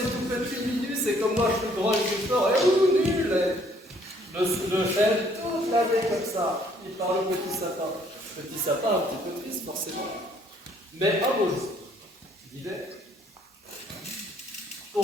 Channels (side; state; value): both; normal; correlation 0.63